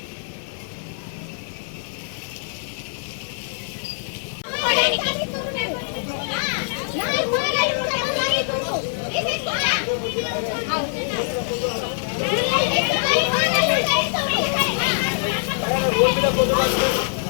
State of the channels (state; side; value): silent; right; 62 dB below the other